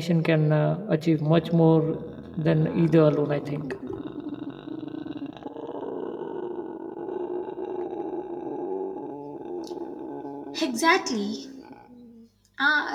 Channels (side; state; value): both; identical; correlation 1.00